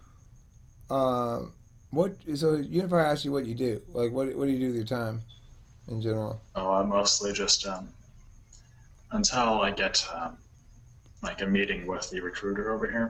What? So Unify asked you what you do. Like, what do you do with your time in general? Oh, I mostly just, until I get, like a meeting with the recruiter over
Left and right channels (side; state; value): both; identical; correlation 1.00